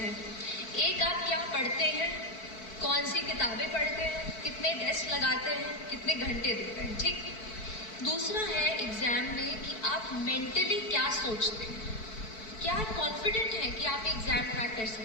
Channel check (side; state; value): right; late; 4.6 ms